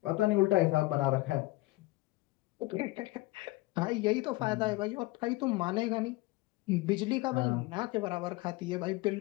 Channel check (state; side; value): quieter; right; 20.3 dB